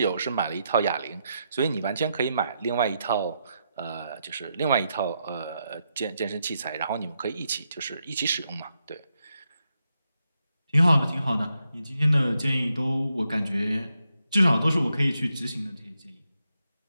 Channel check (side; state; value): both; inverted; correlation -0.82